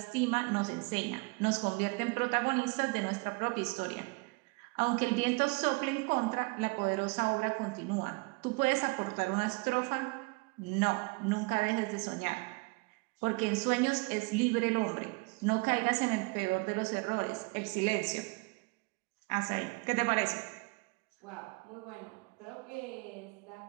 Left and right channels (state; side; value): quieter; left; 28.2 dB